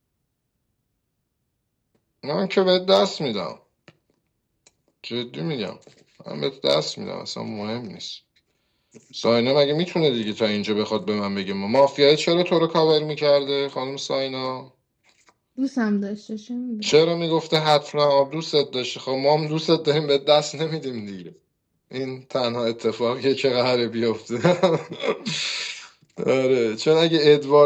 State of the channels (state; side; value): identical; both; correlation 1.00